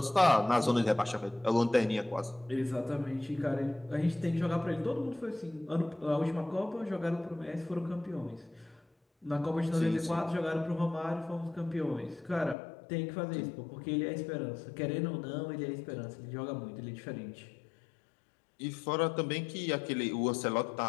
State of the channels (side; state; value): right; drops out; at 12.6 s